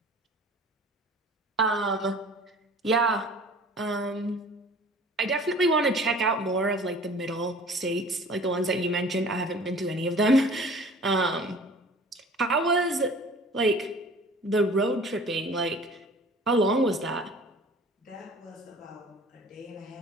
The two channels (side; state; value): both; normal; correlation 0.46